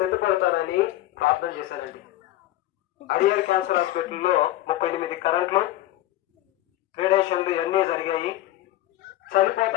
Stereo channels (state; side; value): quieter; right; 14.9 dB